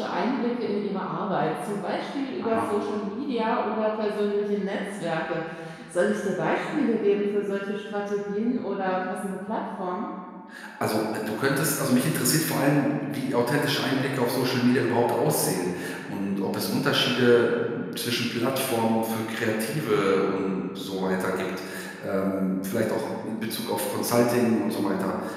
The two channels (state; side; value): identical; both; correlation 1.00